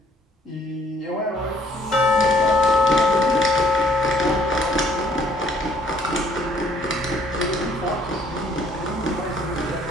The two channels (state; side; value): normal; both; correlation 0.63